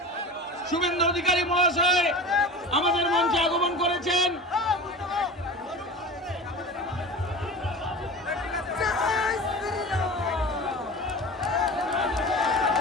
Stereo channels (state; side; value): normal; both; correlation 0.33